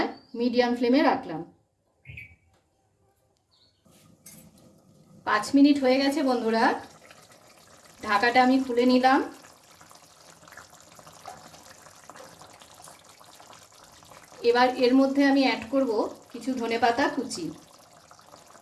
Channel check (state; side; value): identical; both; correlation 1.00